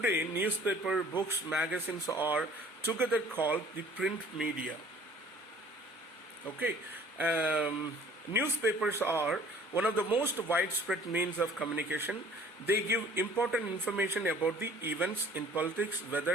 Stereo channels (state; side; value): normal; both; correlation 0.52